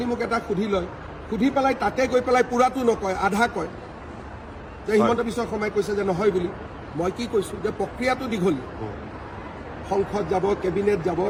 মোক এটা সুধি লয়, সুধি পেলাই তাতে গৈ পেলাই পূৰাটো নকয়, আধা কয় যে হিমন্ত বিশ্ব শৰ্মাই কৈছে যে নহয় বুলি। মই কি কৈছোঁ যে প্ৰক্ৰিয়াটো দীঘলীয়া, সংসদ যাব, কেবিনেট যাব,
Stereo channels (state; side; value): identical; both; correlation 1.00